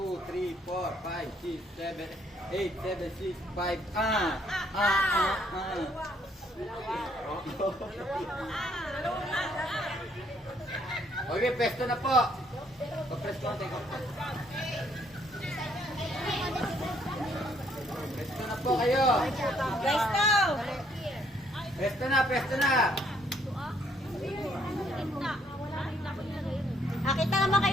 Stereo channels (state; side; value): normal; both; correlation 0.68